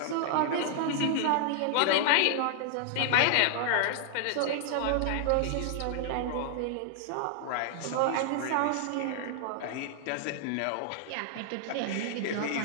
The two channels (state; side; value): different; both; correlation -0.01